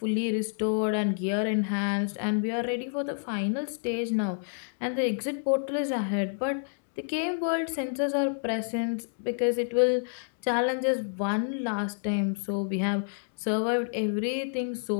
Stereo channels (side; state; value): right; silent; digital silence